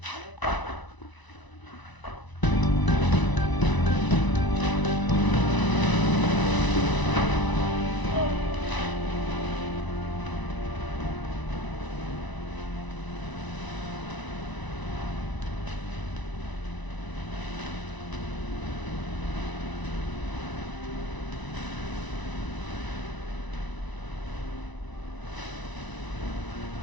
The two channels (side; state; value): right; late; 1.0 ms